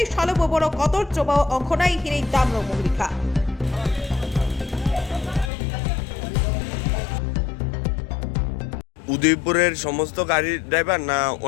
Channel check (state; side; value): drops out; right; at 5.5 s